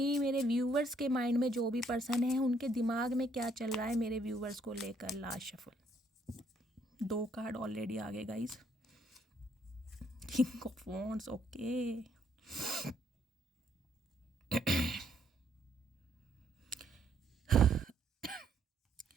मेरे व्यूवर्स के माइंड में जो भी पर्सन है उनके दिमाग में क्या चल रहा है मेरे व्यूवर्स को लेकर। लास्ट शफल 2 कार्ड ऑलरेडी आ गए guys. King of wands, okay.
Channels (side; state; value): both; normal; correlation 0.69